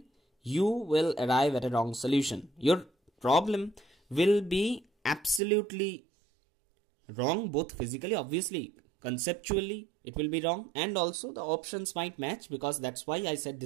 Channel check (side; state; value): left; drops out; at 5.4 s